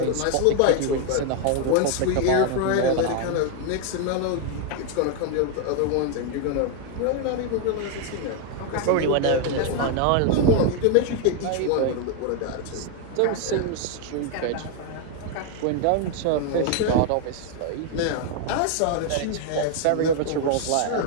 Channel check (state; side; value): different; both; correlation 0.00